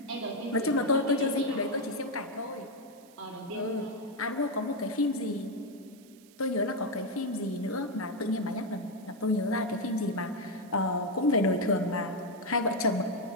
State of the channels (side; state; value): right; noise; hiss, 26 dB below the sound